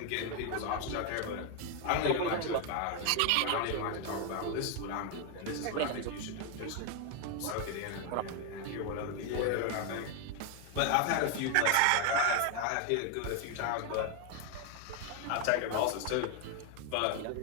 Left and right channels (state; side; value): different; both; correlation 0.01